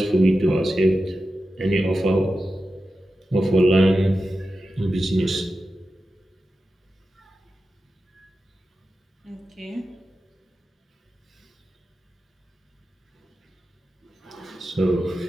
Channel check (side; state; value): both; normal; correlation 0.92